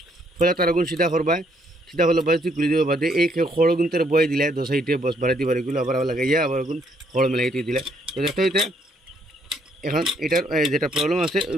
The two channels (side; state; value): both; normal; correlation 0.70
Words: ফলে তার আগুন সিধা করবা, সিধা হলো বাস তুই খুলে দেবো বাদে এই খড় গুনতে বয়ে দিলে 2 সাইডে বস বাড়াইতে পারে, এগুলো আবার লাগাইয়া আবার আগুন খড় মেলাইতে দিলে। তো দেখতে হইতে এখন এটার যেটা প্রবলেম আছে